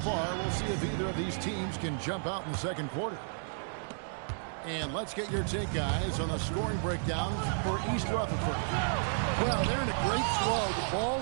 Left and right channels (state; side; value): silent; left; digital silence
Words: We'll see if either of these teams can jump out in the second quarter. And let's get your take, guys, on the scoring breakdown for East Rutherford. Well, they're in a great flow. The